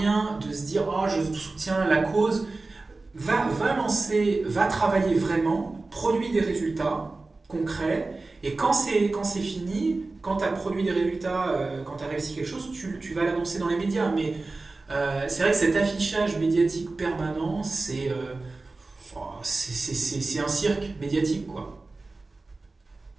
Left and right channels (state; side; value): quieter; left; 3.4 dB